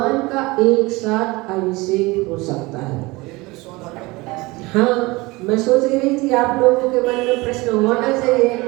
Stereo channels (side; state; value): left; quieter; 22.7 dB